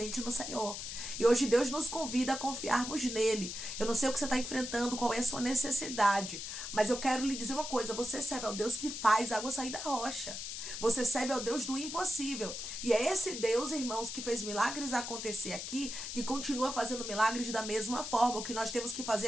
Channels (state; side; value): noise; left; hiss, 6 dB below the sound